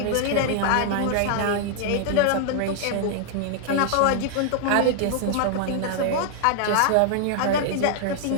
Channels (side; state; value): both; different; correlation 0.00